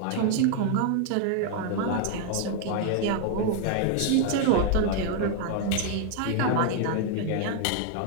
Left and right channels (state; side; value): different; both; correlation 0.00